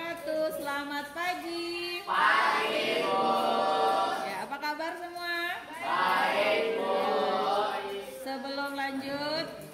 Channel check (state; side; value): identical; both; correlation 1.00